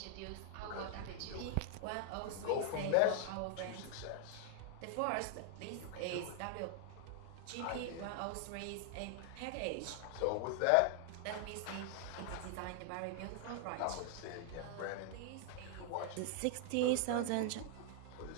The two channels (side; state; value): both; different; correlation 0.00